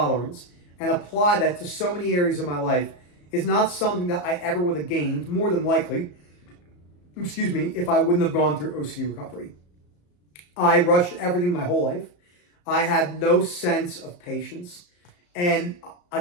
and apply that to so many areas of my life is not something that I ever would have gained, more than likely, if I wouldn't have gone through OCD recovery. I rushed everything my whole life. I had no sense of patience. And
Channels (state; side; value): late; right; 34 ms